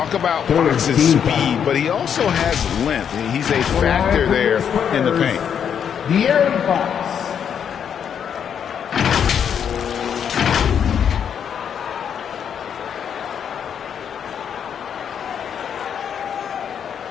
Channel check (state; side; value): quieter; right; 8.1 dB